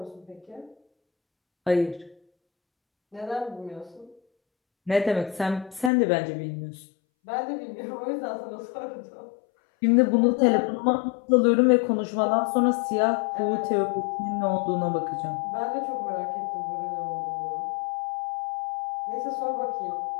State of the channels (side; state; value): right; drops out; at 5.9 s